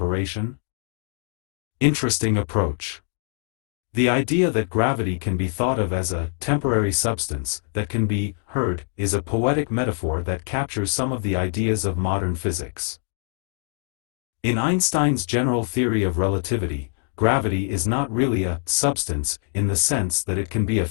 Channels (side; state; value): right; silent; 58 dB below the other